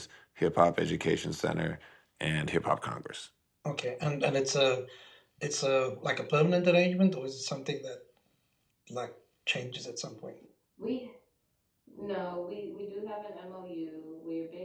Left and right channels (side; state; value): both; identical; correlation 1.00